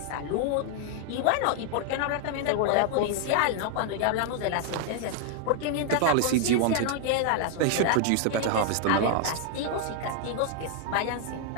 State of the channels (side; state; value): both; different; correlation 0.00